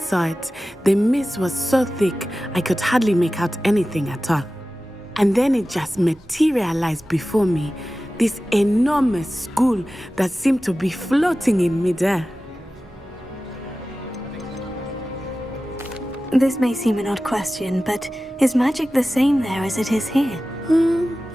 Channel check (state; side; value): normal; both; correlation 0.95